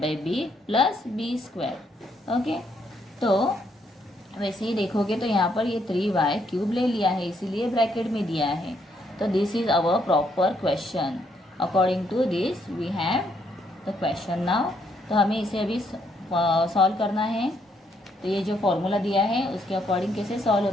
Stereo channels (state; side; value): normal; both; correlation 0.73